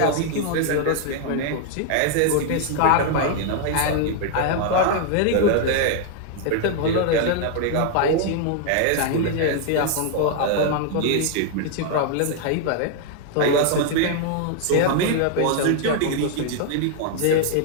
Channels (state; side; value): different; both; correlation 0.00